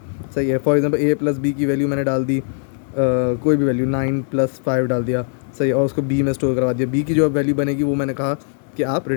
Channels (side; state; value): right; silent; digital silence